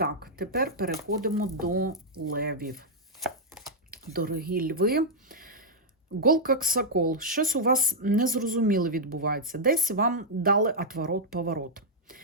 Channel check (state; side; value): normal; both; correlation -0.06